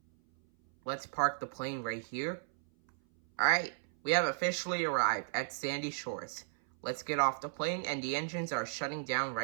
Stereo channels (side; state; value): left; silent; 55 dB below the other